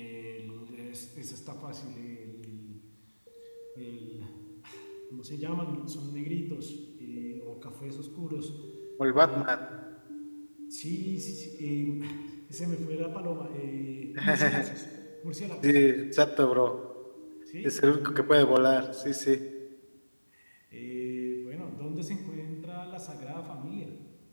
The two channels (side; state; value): both; inverted; correlation -1.00